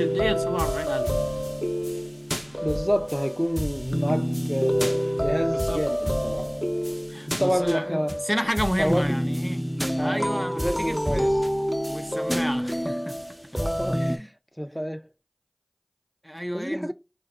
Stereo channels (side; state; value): both; identical; correlation 1.00